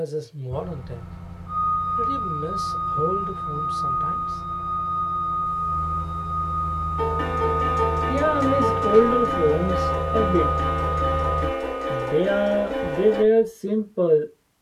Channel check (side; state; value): both; identical; correlation 1.00